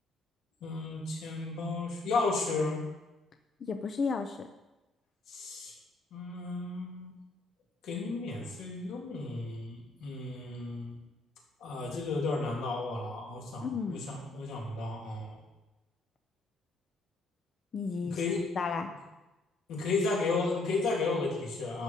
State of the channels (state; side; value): quieter; right; 3.3 dB